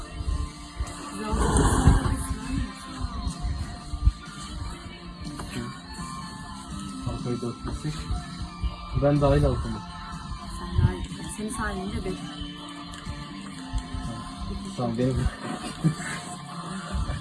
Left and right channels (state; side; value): identical; both; correlation 1.00